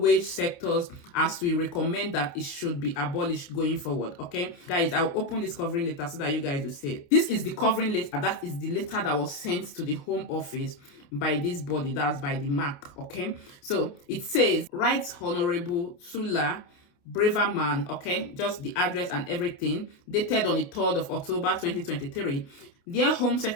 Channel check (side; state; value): right; late; 29 ms